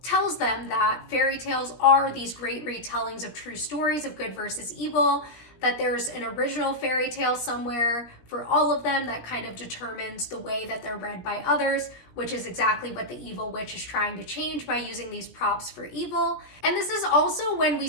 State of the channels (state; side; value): late; right; 17 ms